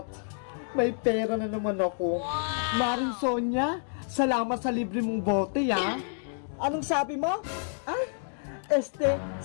May pera na naman ako. Maring Sonia, salamat sa libre mong bote, Anong sabi mo?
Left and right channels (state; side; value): silent; right; digital silence